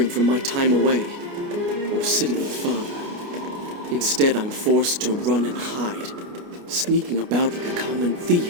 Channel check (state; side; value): late; left; 29 ms